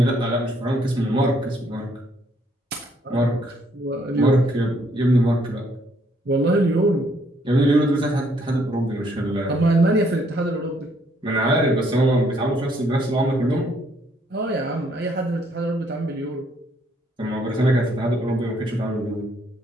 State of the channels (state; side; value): normal; both; correlation 0.68